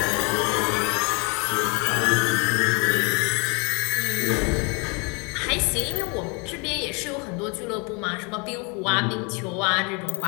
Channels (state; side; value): quieter; right; 32.1 dB